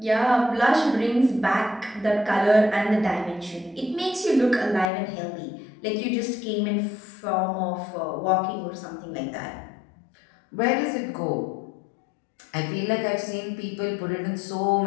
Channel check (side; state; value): right; drops out; at 4.9 s